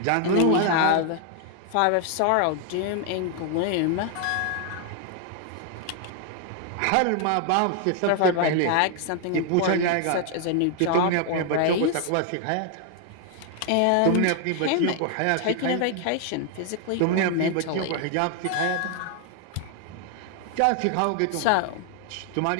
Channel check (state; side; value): different; both; correlation 0.00